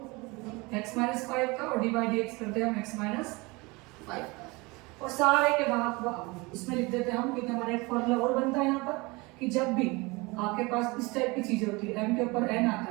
x माइनस 5 का और डिवाइड dx करते हैं हम x माइनस 5 का। और सारे के बाद इसमें लिख देते हैं हम, क्योंकि हमारा एक फॉर्मूला और बनता है यहाँ पर कि जब भी आपके पास इस टाइप की चीजें होती है, m के ऊपर n आता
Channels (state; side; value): quieter; left; 25.0 dB